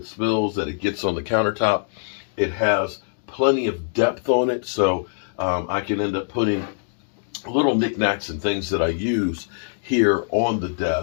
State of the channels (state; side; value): silent; right; digital silence